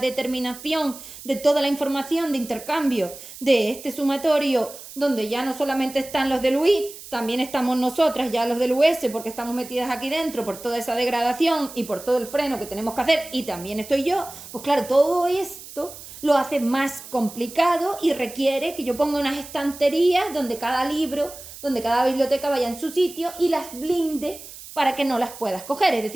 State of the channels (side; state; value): right; noise; hiss, 15 dB below the sound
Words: de toda la información de intercambio de este sumatorio donde ya no solamente están los del UI, también estamos nosotras ya los del US porque estamos metidas aquí dentro por toda esa degradación y por todo el freno que tenemos que hacer y también estoy yo, pues claro, todo esto lo hace más complicado y requiere que yo ponga unas estanterías donde cada libro, donde cada biblioteca vaya en su sitio y las blinde para que no las puedas coger. Es